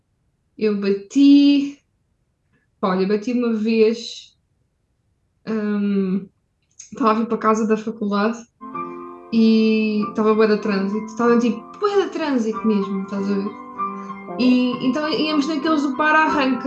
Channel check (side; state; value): both; identical; correlation 1.00